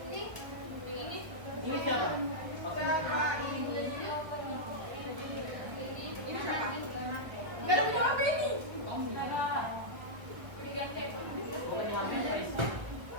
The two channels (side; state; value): left; late; 1.4 ms